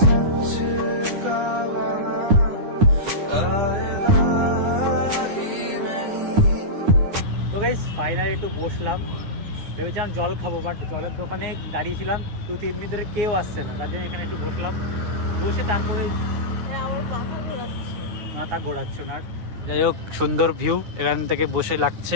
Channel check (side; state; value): left; late; 9.7 ms